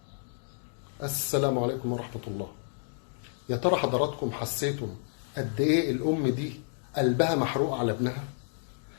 السلام عليكم ورحمة الله. يا ترى حضراتكم حسيتم قد ايه الام دي قلبها محروق على ابنها؟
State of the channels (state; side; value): silent; right; digital silence